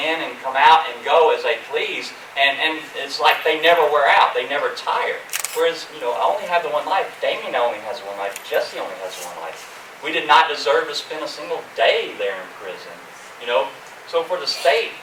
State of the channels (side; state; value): both; identical; correlation 1.00